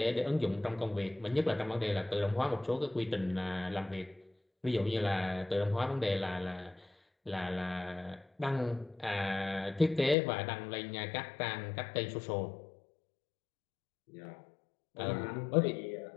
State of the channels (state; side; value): drops out; right; at 10.2 s